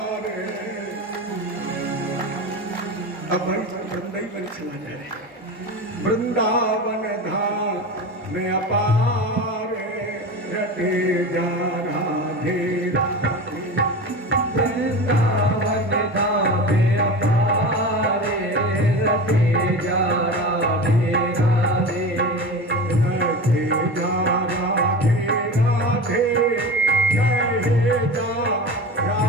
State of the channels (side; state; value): both; normal; correlation 0.29